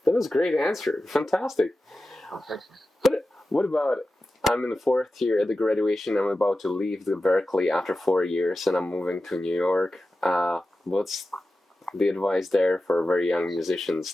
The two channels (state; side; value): normal; both; correlation 0.93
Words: was a great answer. Fantastic. Oh, thanks. But what about, I'm in the 4th year at the graduation. I'm about to leave the Berkeley after 4 years, and I'm moving to New York. What's the advice there for very young musicians